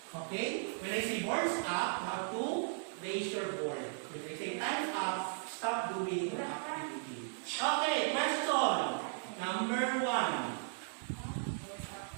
Okay? When I say boards up, you have to raise your board. When I say time's up, stop doing the activity. Okay, question. Number 1.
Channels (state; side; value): silent; left; 53 dB below the other